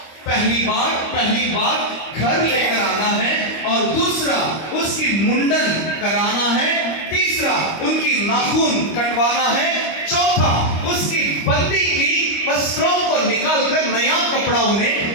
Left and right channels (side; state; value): right; late; 25 ms